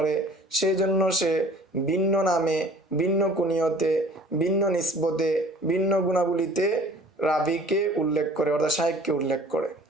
সেই জন্য সে ভিন্ন নামে, ভিন্ন কুনিয়তে, ভিন্ন নিসবতে, ভিন্ন গুণাবলীতে রাবিকে উল্লেখ করে, অর্থাৎ শাইখকে উল্লেখ করে।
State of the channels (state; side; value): normal; both; correlation 0.49